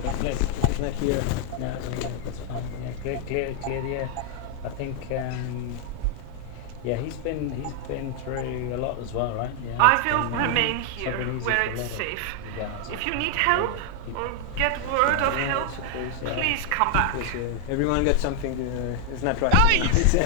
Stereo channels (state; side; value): different; both; correlation 0.00